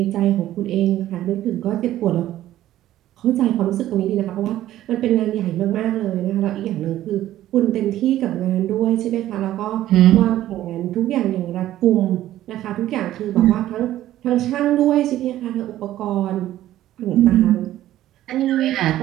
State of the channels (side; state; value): left; quieter; 13.6 dB